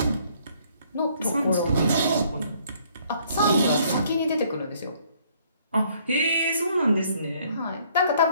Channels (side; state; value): both; inverted; correlation -0.64